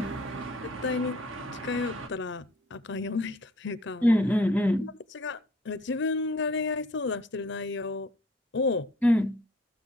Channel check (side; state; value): both; normal; correlation 0.58